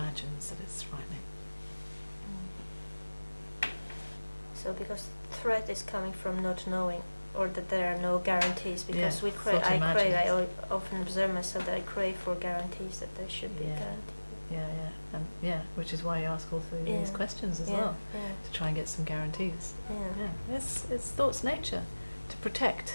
that it's frightening. So because threat is coming from not knowing, or that there are no guarantees, because Yeah, I often observe myself that I crave for guarantees, that there should be a Yeah. guarantee. And which is why you ask all three of these questions as well, to try and get some guarantees. It's thought's nature to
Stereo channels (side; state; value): both; inverted; correlation -1.00